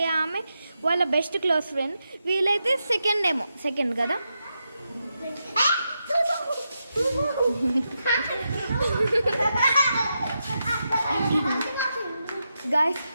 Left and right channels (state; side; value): inverted; both; correlation -0.86